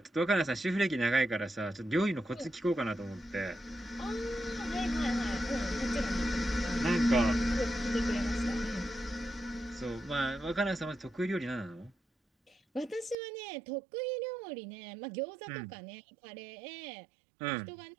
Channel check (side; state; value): left; drops out; at 13.2 s